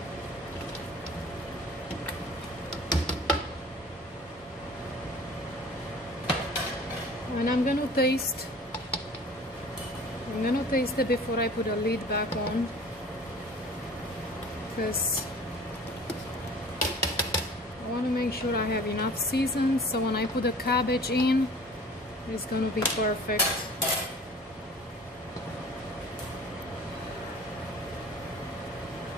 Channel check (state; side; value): normal; both; correlation 0.46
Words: And I'm gonna taste it before I put the lid back on, because I want to make sure I have enough season, so when I put the cabbage in, it's gonna be perfect.